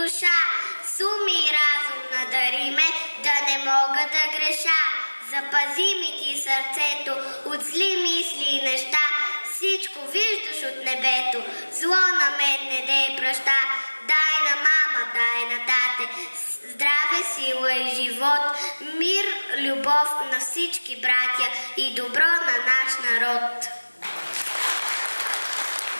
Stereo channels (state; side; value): inverted; both; correlation -1.00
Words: с ум и разум надари ме, да не мога да греша. Запази ми ти сърцето от зли мисли и неща, всичко виждаш от небето, зло на мен не дей праща. Дай на мама, дай на тате, здраве, сила и живот, мир, любов на всички братя и добро на наш народ.